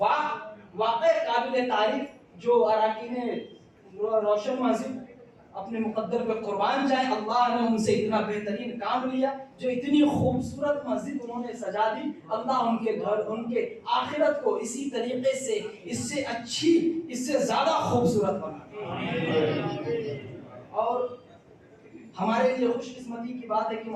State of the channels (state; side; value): identical; both; correlation 1.00